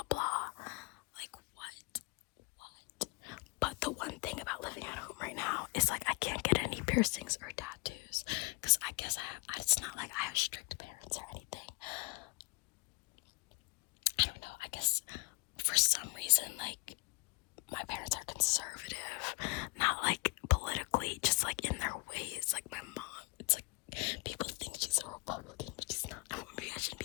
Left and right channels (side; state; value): right; quieter; 26.3 dB